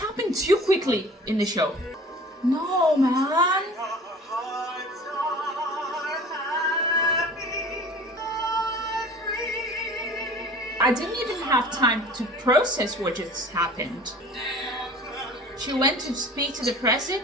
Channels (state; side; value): normal; both; correlation 0.43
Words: too quickly in the show. No, man. I didn't even have time to process what just happened. She went to speak to the